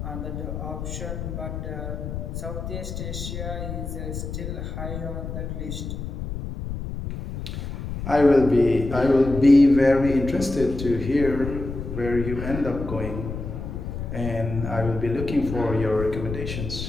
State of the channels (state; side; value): noise; left; rumble, 6 dB below the sound